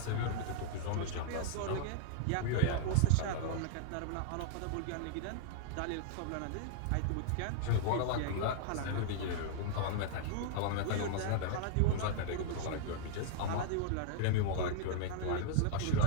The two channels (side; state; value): both; different; correlation -0.02